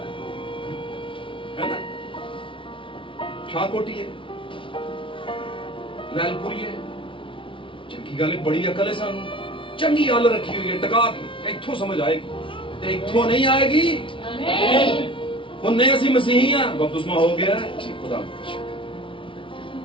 है ना शाहकोटी है लैलपुरी है चंगी गल बड़ी अकल है सानू चंगी गल रखी हुई है टका के इत्थों समझ आएगी ते इत्थों नहीं आएगी। उन्हें असी मसीही हैं बपतिस्मा हो गया है खुदा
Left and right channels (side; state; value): right; late; 0.25 ms